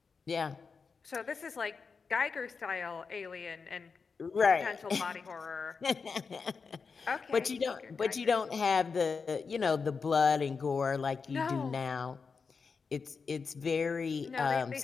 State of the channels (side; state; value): right; quieter; 5.1 dB